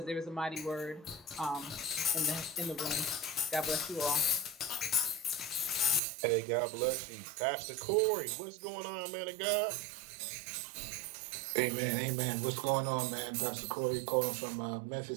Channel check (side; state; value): left; drops out; at 6.0 s